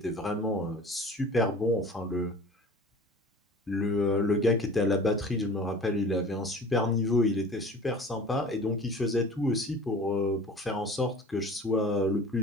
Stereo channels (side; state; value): both; normal; correlation 0.42